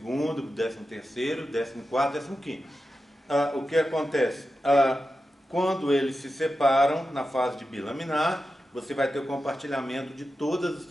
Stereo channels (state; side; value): normal; both; correlation 0.91